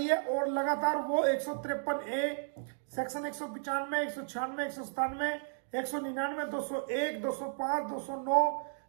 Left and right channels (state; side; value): silent; left; digital silence